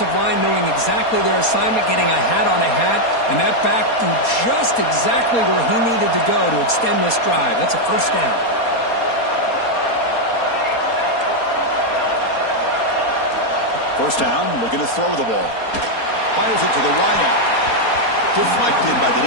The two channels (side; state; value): right; late; 4.2 ms